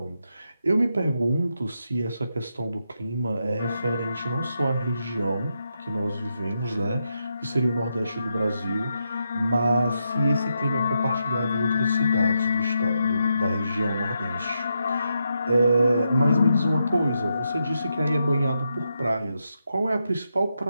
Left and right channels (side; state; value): both; inverted; correlation -0.83